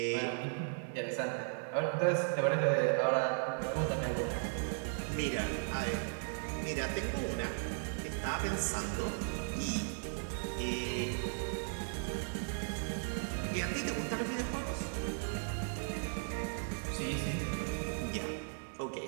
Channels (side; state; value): left; silent; digital silence